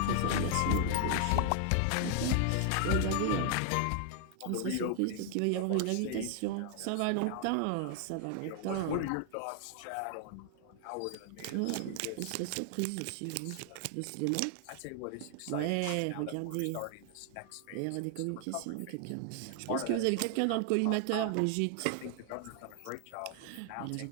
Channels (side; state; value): both; different; correlation 0.00